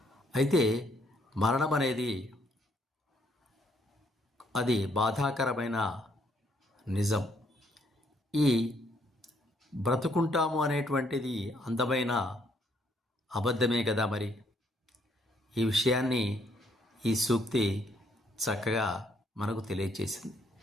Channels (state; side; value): normal; both; correlation 0.69